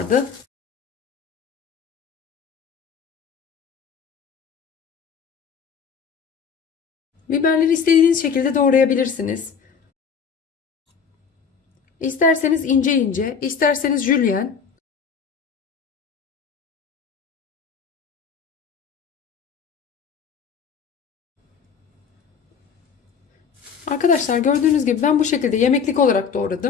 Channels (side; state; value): right; quieter; 6.4 dB